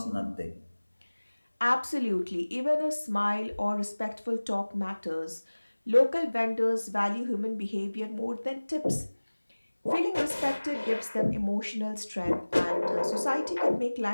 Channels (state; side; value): inverted; both; correlation -1.00